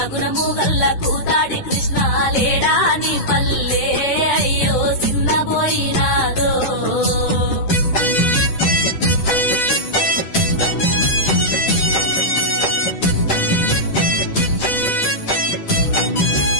గుణము గల్ల కూతాడి కృష్ణ లేడా నీ పల్లె అయ్యో సిన్నబోయినాదో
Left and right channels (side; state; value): right; late; 10 ms